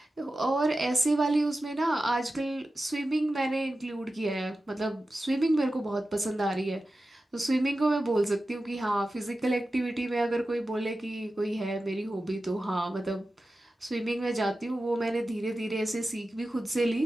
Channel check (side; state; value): both; normal; correlation 0.94